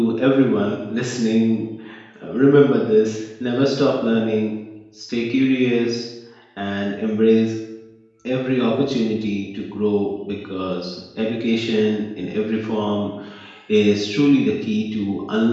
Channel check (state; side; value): identical; both; correlation 1.00